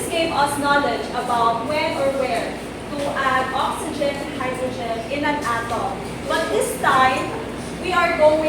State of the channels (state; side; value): identical; both; correlation 1.00